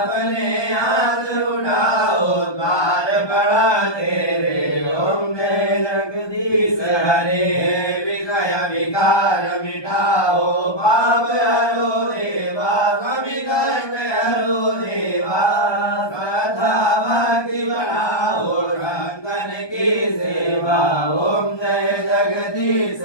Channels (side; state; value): right; late; 1.2 ms